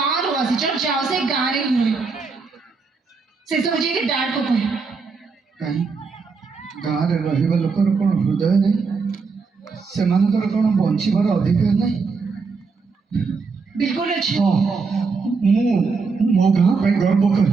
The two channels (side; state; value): left; quieter; 4.7 dB